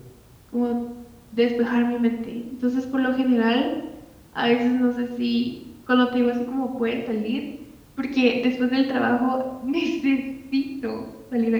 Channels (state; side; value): identical; both; correlation 1.00